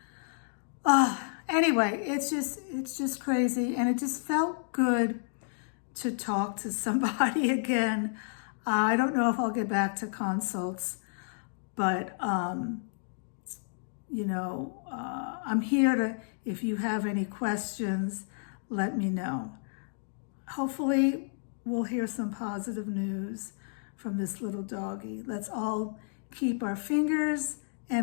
Anyway, it's just crazy, and it just felt good to talk to somebody again. I don't know if I'll get back to consults, but I'm here to, if you have any questions, let me know. Hopefully, we'll hear some positive news from this little doggy. Let's all keep our fingers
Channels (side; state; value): right; silent; digital silence